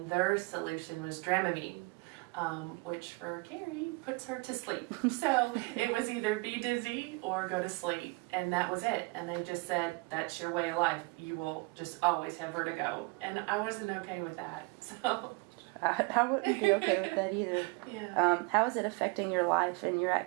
their solution was Dramamine. Which for Carrie puts her to sleep. So it was either be dizzy or go to sleep, and that was it. And they just said, that's your way of life. You will just always have vertigo. And I wasn't okay with that. So I wouldn't be okay with that either. Yeah. How is it affecting your life and your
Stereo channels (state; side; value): quieter; left; 28.7 dB